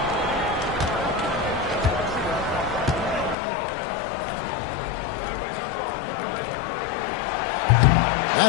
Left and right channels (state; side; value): drops out; right; at 3.4 s